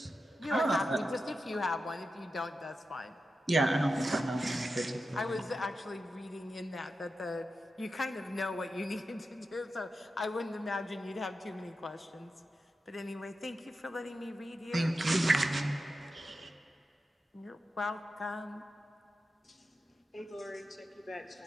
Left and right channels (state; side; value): normal; both; correlation 0.90